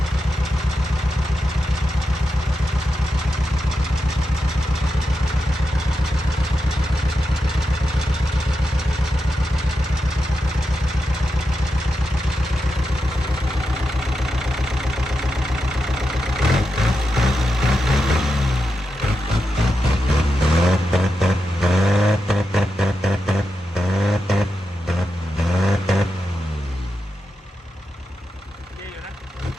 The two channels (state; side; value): normal; both; correlation 0.88